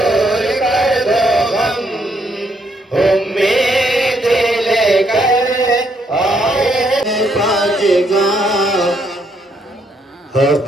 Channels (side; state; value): both; normal; correlation 0.73